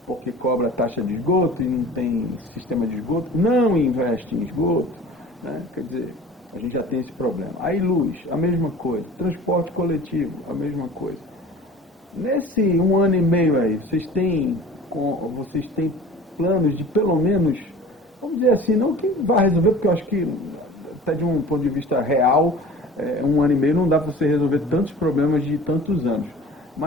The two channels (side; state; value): both; normal; correlation 0.43